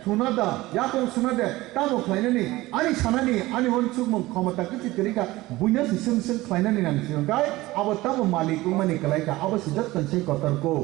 थुनादा याकं सुनादे तामो खायनानि आनी सानानि आनी हनसुगमु क्षमता किति तरिका बयनो सुसुं खायनानि नांसिगंगाय आबो तामो मालिकु मानि कलायका आबो सिजत कनसे कतरको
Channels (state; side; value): quieter; left; 18.7 dB